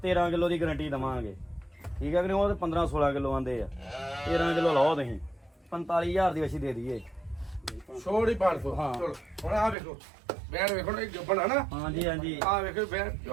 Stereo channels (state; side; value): drops out; left; at 9.8 s